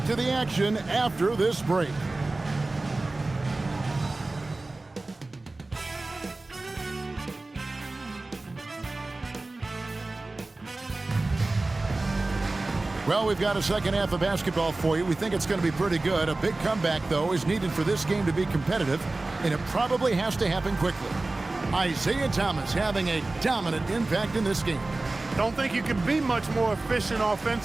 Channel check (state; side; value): quieter; left; 3.1 dB